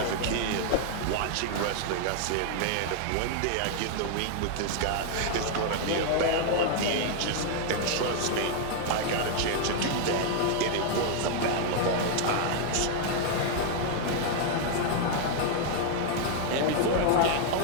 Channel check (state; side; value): different; both; correlation 0.00